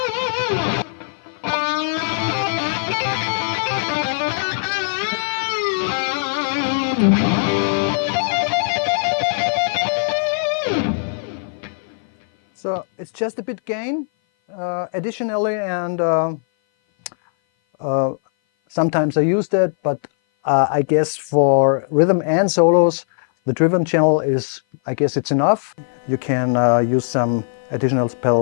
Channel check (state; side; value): silent; right; 56 dB below the other